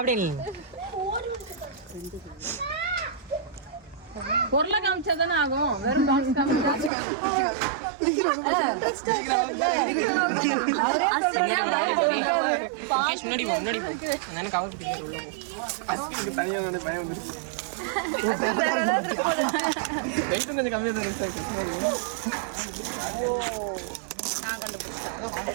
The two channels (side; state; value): left; drops out; at 6.9 s